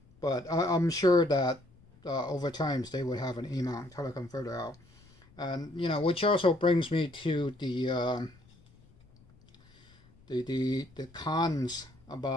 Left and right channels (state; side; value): noise; left; rumble, 28 dB below the sound